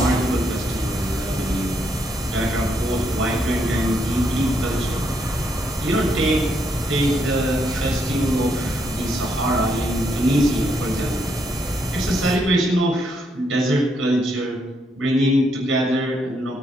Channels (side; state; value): both; normal; correlation 0.76